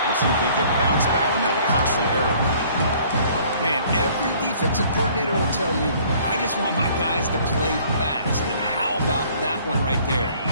Let's see if they can bounce back from that costly error. Man, every defensive coordinator will tell you, I just want my guys to play fast. And how about that one right there?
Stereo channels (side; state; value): both; inverted; correlation -0.56